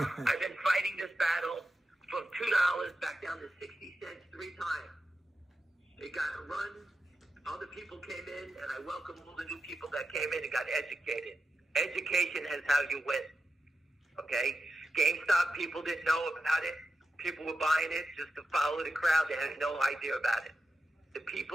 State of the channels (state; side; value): normal; both; correlation 0.90